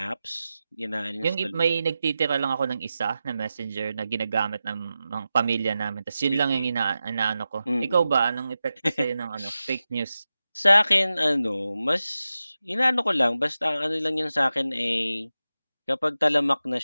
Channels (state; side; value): inverted; both; correlation -0.92